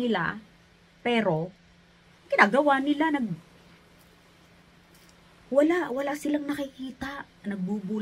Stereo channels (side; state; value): both; identical; correlation 1.00